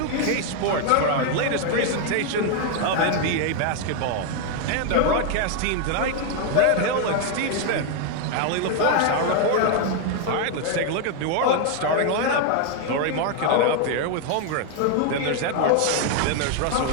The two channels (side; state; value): both; different; correlation 0.01